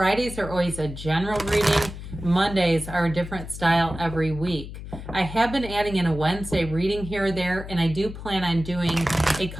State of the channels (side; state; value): left; noise; hum, 11 dB below the sound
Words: are always a general reading. Mondays are a different style every week. I have been adding in a Wednesday reading here or there, and I do plan on doing a